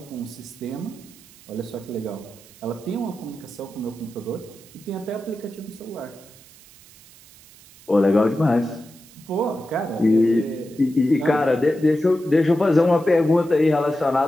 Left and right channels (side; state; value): right; noise; hiss, 23 dB below the sound